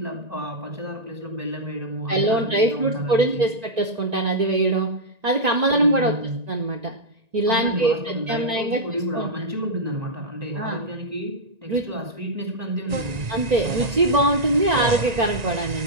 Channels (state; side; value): late; left; 1.9 ms